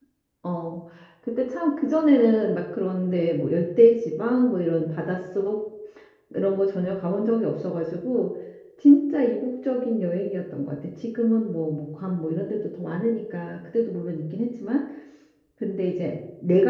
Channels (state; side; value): identical; both; correlation 1.00